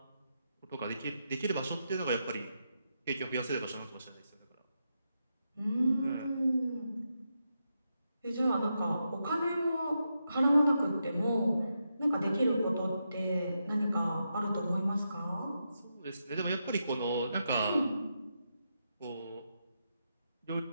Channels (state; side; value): inverted; both; correlation -0.85